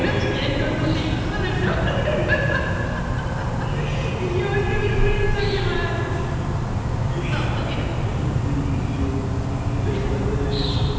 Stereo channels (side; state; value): both; identical; correlation 1.00